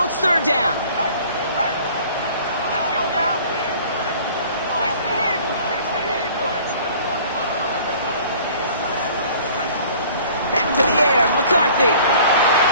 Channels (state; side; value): inverted; both; correlation -0.50